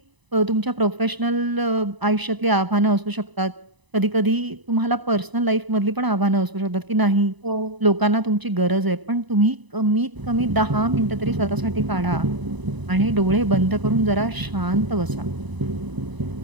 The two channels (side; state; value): left; late; 1.0 ms